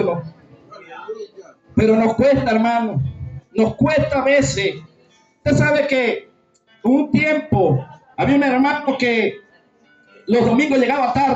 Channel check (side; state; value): both; identical; correlation 1.00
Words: Pero nos cuesta, hermano. Nos cuesta a veces. Usted sabe que un tiempo había un hermano que los domingos llegaba